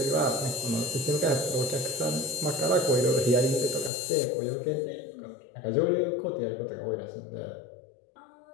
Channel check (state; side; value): drops out; right; at 3.9 s